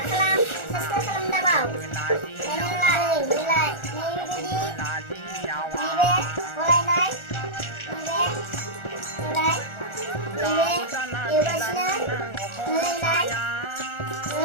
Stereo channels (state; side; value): late; right; 1.4 ms